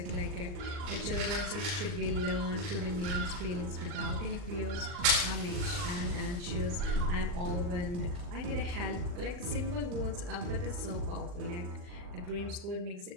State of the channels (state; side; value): late; left; 40 ms